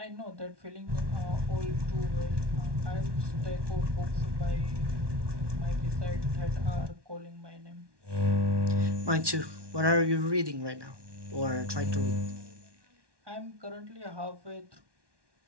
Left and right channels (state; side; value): late; left; 1.2 ms